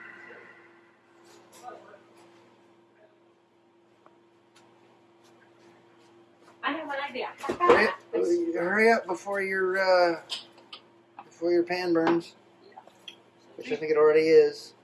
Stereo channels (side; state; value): both; identical; correlation 1.00